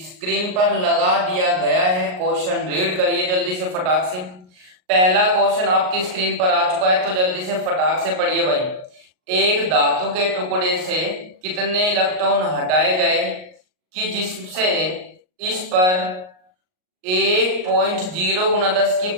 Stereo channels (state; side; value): late; left; 38 ms